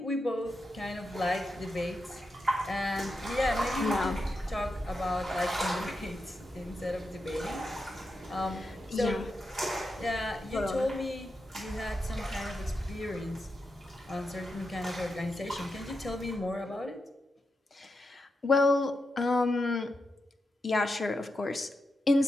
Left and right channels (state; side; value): normal; both; correlation 0.87